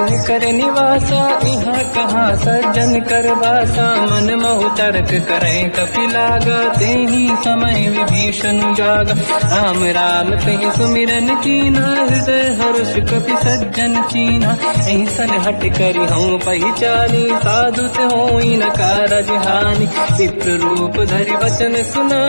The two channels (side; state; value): both; inverted; correlation -1.00